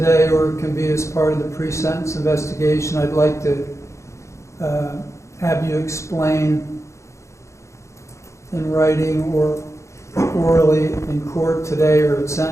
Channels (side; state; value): right; late; 0.14 ms